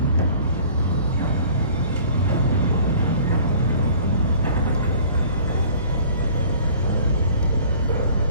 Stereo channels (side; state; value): both; inverted; correlation -0.49